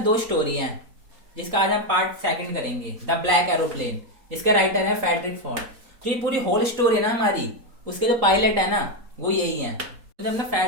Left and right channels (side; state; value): left; late; 4.2 ms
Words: दो स्टोरी हैं जिसका आज हम पार्ट सेकंड करेंगे, द ब्लैक एरोप्लेन, जिसके राइटर है फ्रेडरिक फॉर्ड। तो ये पूरी होल स्टोरी है ना हमारी, उसके जो पायलट है ना वो यही है। तो जब ना